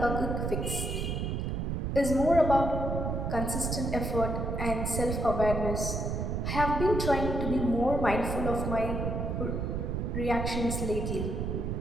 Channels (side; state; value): right; noise; rumble, 1 dB below the sound